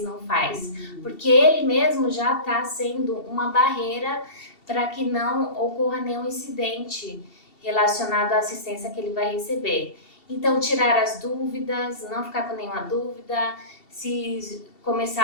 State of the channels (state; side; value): late; right; 2.7 ms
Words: não faz? Porque ele mesmo já está sendo uma barreira para que não ocorra nenhum incidente relacionado à assistência que ele vai receber. Então, tirar as dúvidas, não ficar com nenhuma dúvida. Se